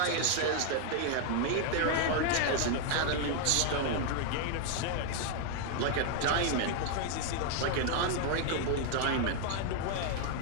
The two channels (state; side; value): different; both; correlation 0.00